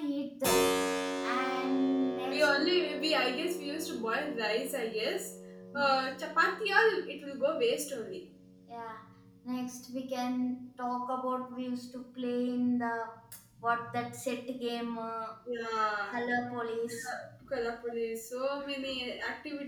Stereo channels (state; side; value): identical; both; correlation 1.00